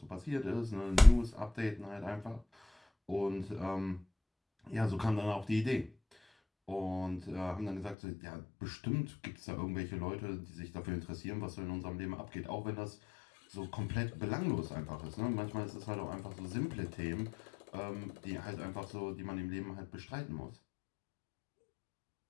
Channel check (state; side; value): drops out; right; at 8.0 s